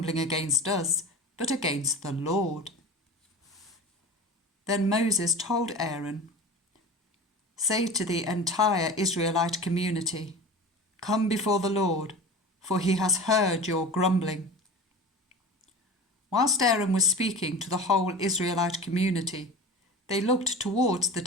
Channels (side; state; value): both; normal; correlation 0.33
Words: against us, but against the Lord." Then Moses told Aaron, "Say to the entire Israelite community, 'Come before the Lord, for he has heard your grumbling.'" Whilst Aaron was speaking to the whole Israelite community, they looked towards the